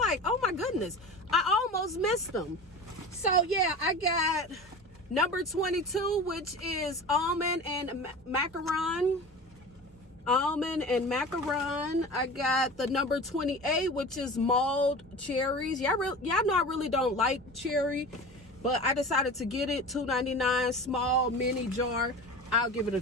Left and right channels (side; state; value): both; normal; correlation 0.34